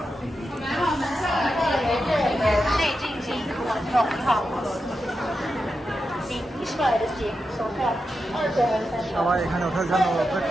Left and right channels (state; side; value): normal; both; correlation 0.88